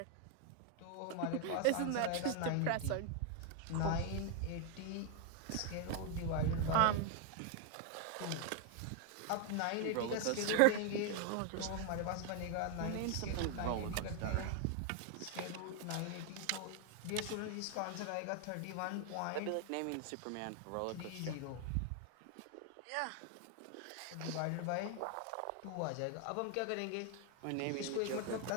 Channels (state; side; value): different; both; correlation 0.00